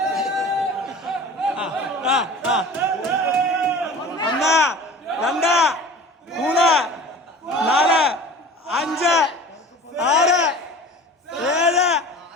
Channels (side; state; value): both; normal; correlation 0.39